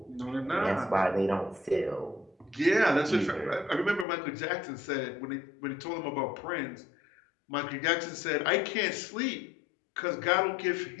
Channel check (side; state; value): right; drops out; at 4.0 s